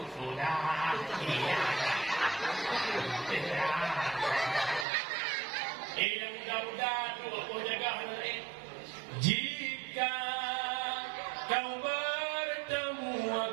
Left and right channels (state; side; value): drops out; left; at 4.9 s